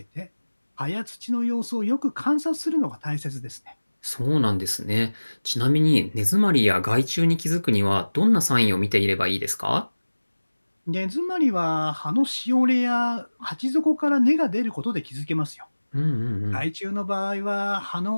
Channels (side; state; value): both; inverted; correlation -1.00